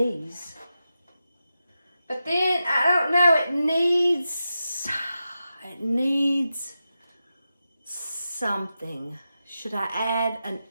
But then, I don't know, it needs something. Should I add an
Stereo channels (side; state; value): both; inverted; correlation -0.90